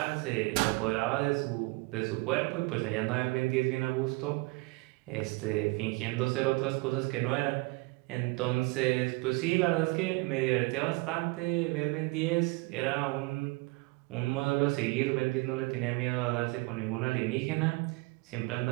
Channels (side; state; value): left; quieter; 25.6 dB